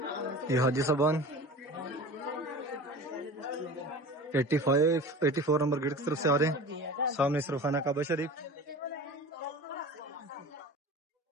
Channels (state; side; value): normal; both; correlation 0.36